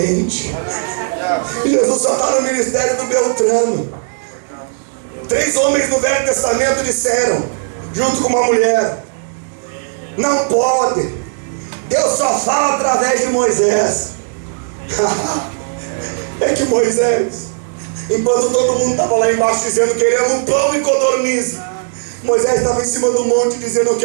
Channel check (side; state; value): left; silent; digital silence